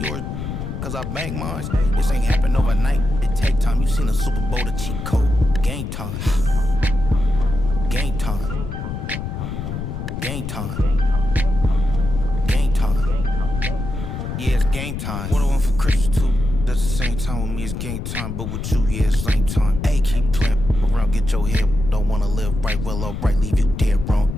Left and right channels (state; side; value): noise; left; rumble, 5 dB below the sound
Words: cause I bang mine. This ain't happen overnight, it take time. You seen a Super Bowl, the cheat code. Game time. Game time. Game time. Game time. Yeah, it's game time. What I want for Christmas too. That's the same time with me, it's game time. But with you, yeah, it's same time. Hey, keep playing around, get your head. Don't wanna live right, well, alright, leave you dead wrong.